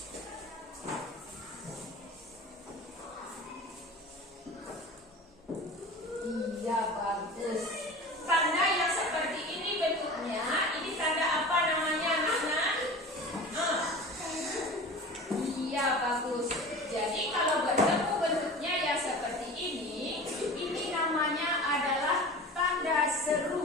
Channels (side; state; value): both; normal; correlation 0.36